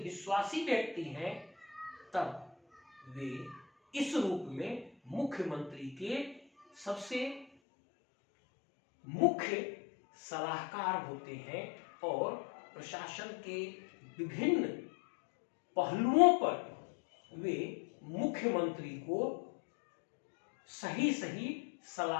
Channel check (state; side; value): drops out; right; at 7.5 s